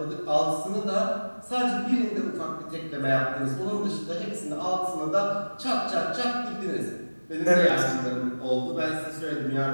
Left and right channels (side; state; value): both; inverted; correlation -1.00